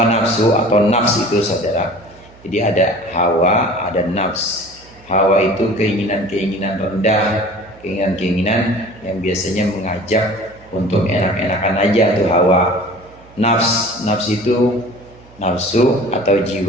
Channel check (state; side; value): noise; right; hum, 25 dB below the sound